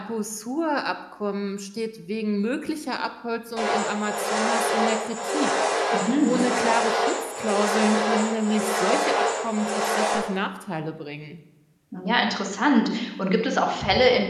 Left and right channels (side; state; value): both; identical; correlation 1.00